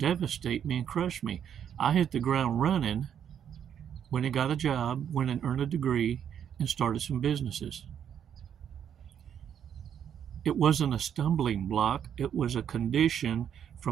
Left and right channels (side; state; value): left; quieter; 8.9 dB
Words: me and crush me. I hit the ground running, went and got a job, went and earned a degree, and started some businesses. It wasn't a stumbling block. It was a condition